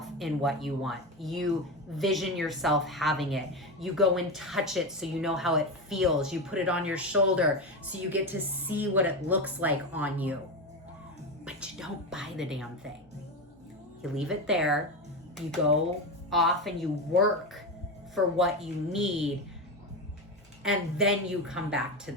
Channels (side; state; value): both; normal; correlation 0.17